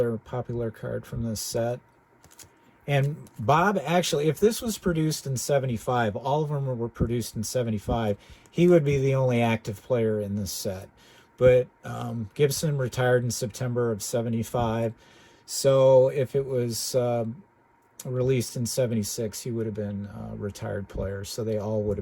popular card from this set. And Bob, actually, if this was produced in 75, all of them were produced in 75, he would be the only active player in this set. But Gibson retired in September of 75, so if it was released in 76, he would have been a retired player, so they all would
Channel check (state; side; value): identical; both; correlation 1.00